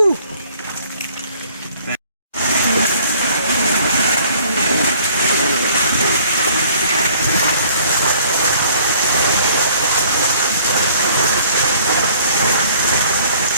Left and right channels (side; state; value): both; inverted; correlation -0.56